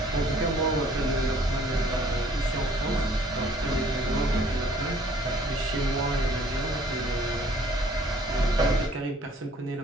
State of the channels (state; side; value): normal; both; correlation 0.57